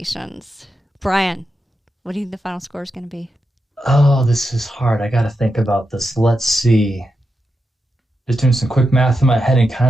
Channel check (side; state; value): both; normal; correlation 0.87